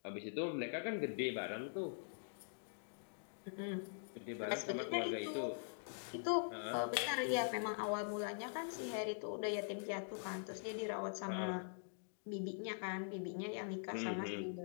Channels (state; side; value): silent; right; digital silence